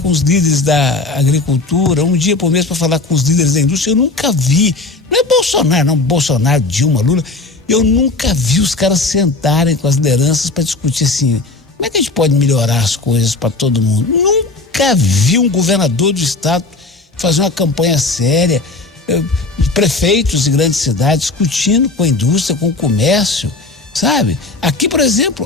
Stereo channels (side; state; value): right; quieter; 3.4 dB